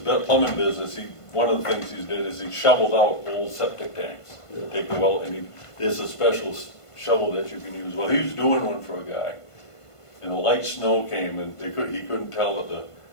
business. One of the things he did is he shoveled out old septic tanks. Take the well, and there's a special shovel that you can use. Well, he was doing one for a guy, and a light snow came, and he couldn't tell that the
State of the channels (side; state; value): right; late; 1.5 ms